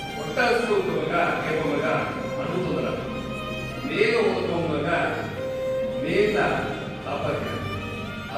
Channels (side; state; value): both; identical; correlation 1.00